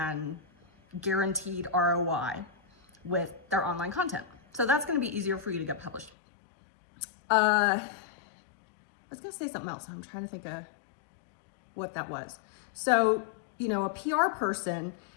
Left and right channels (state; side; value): drops out; right; at 6.1 s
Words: guaranteed ROI with their online content. So that's going to be easier for you to get published. I was going to say something else. I'm trying to think of what that was. So, a PR person,